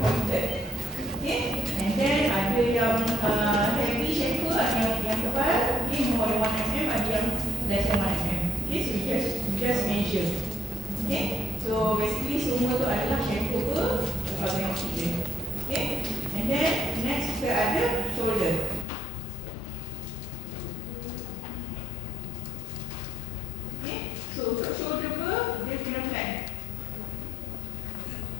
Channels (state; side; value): drops out; right; at 18.9 s